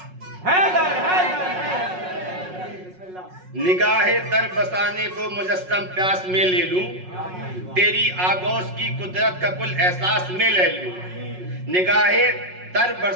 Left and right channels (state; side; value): late; left; 5.5 ms